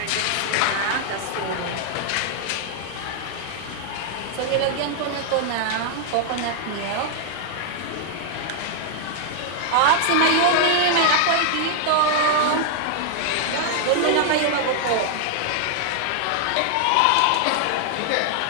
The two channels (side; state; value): both; different; correlation 0.00